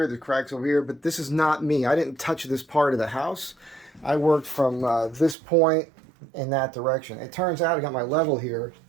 there's cracks over here, but this is not me. I didn't touch this part of the house. I worked from this point in that direction. It turns out I got my level here.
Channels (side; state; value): left; drops out; at 5.4 s